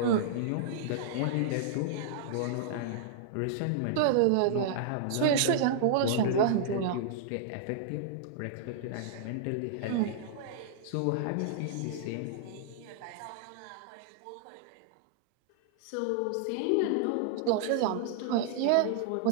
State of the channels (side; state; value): both; different; correlation -0.02